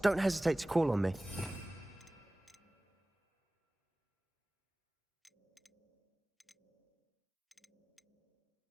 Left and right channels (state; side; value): normal; both; correlation 0.98